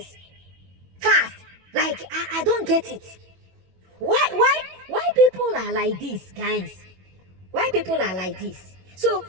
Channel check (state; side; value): late; left; 21 ms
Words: fast. Like I don't get it. Why people are like this, guys? Why people are like this? So